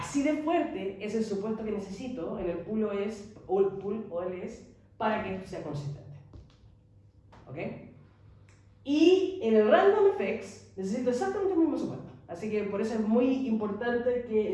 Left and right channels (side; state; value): both; identical; correlation 1.00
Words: de fuerte es el supuesto que necesito en el pool OLS para que esto sea consistente. ¿Ok? Y en el random effects necesito exactamente el mismo supuesto. Así que por eso es muy importante que